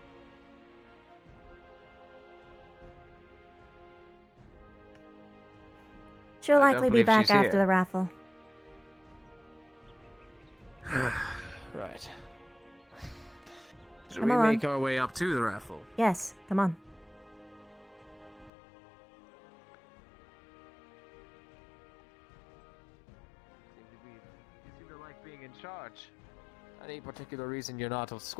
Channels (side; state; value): right; drops out; at 18.5 s